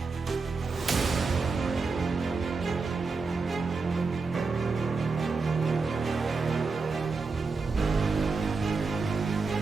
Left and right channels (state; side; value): quieter; left; 4.3 dB